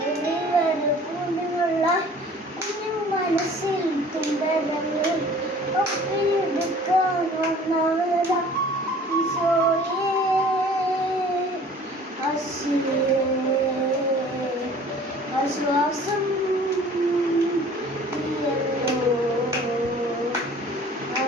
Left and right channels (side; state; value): both; normal; correlation 0.49